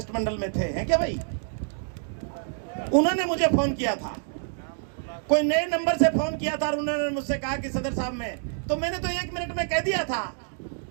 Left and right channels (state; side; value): silent; left; digital silence